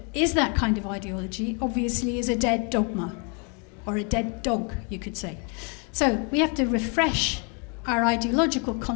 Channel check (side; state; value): right; quieter; 35.9 dB